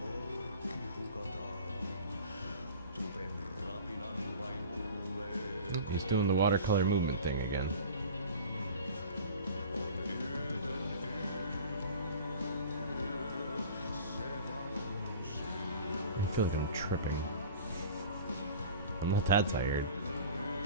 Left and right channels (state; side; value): inverted; both; correlation -0.41